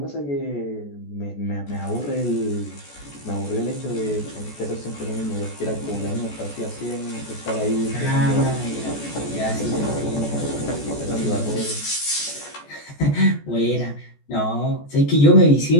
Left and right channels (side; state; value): right; late; 14 ms